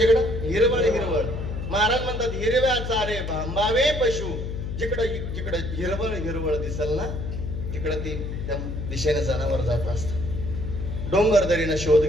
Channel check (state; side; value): noise; left; hum, 5 dB below the sound